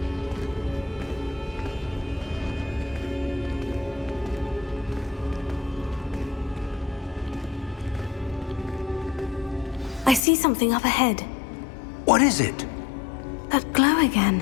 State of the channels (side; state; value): right; drops out; at 10.2 s